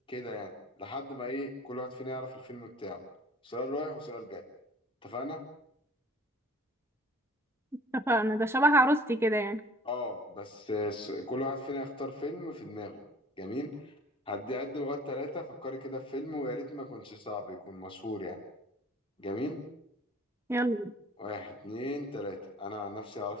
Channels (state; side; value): normal; both; correlation 0.51